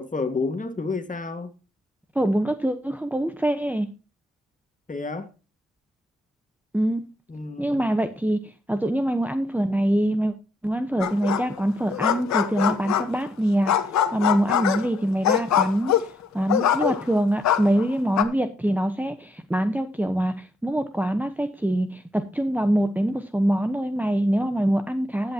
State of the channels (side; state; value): both; normal; correlation 0.76